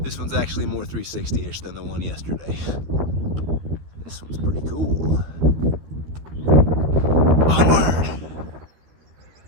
This one's actually more 360-ish than the one yesterday. This one's pretty cool. Onward!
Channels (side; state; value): left; late; 13 ms